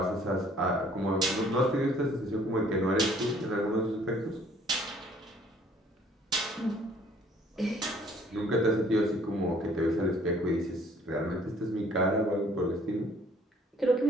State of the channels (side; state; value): both; normal; correlation 0.58